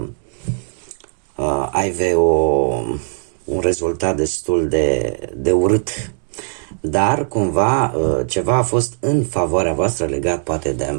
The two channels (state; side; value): silent; left; 67 dB below the other